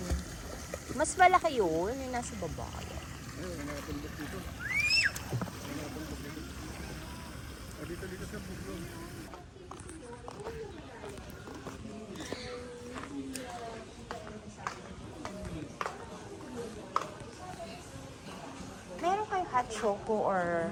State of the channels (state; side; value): identical; both; correlation 1.00